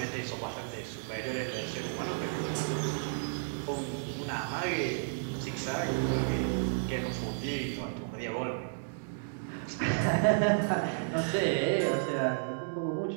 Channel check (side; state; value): left; silent; digital silence